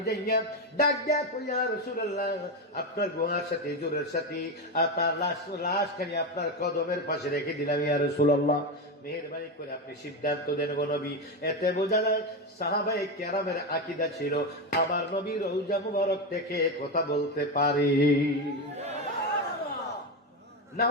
যাইয়া ডাক দেয়া, ইয়া রাসূলুল্লাহ, আপনার গুহার সাথে জোরের সাথে আপনার লাশখানি আপনার কদমের পাশে রেখে দিলাম ইয়া রাসূলুল্লাহ, মেহেরবানি করে আপনি সিদ্ধান্ত দেন গো নবী। এতে বোঝা যায় সাহাবায়ে কেরামের আকীদা ছিল আমার নবী রওজা মুবারক থেকে কথা বলতে পারে, না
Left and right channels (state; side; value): normal; both; correlation 0.13